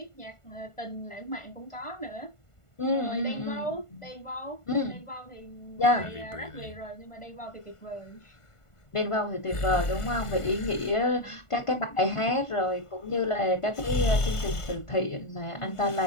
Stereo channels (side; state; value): right; late; 1.5 ms